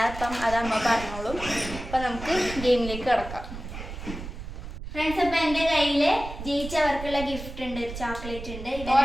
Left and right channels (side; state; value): right; noise; rumble, 10 dB below the sound